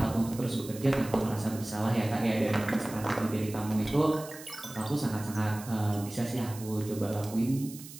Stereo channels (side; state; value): right; noise; hiss, 15 dB below the sound